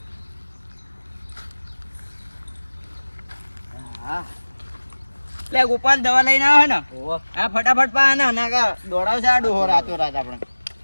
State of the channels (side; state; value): both; inverted; correlation -1.00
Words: હા લે ગોપાલ દવા લઈને આવે ને હા ફટાફટ પા ને ના કા દોડાવશે આ ડોહો રાતો રાત આપણે.